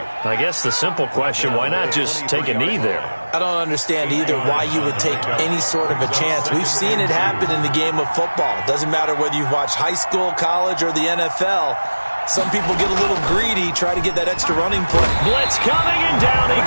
I guess the simple question, why not just take a knee there? I don't understand either why you would take any sort of a chance. We've seen it happen in the game of football. Doesn't matter whether you've watched high school, college, or the NFL. Some people get a little greedy, try to get that extra running play. Blitz coming, and down he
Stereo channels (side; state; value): both; inverted; correlation -1.00